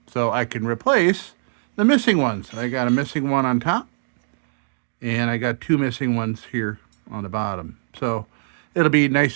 So I can replace the missing ones. I got a missing one on top. And I got 2 missing ones here on the bottom. So it'll be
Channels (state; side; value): silent; left; digital silence